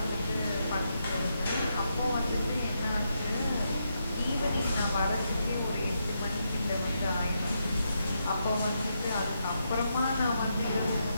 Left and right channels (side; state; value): both; inverted; correlation -0.82